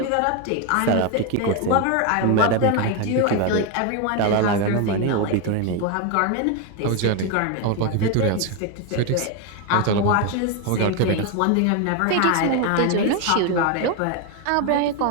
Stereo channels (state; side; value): different; both; correlation 0.02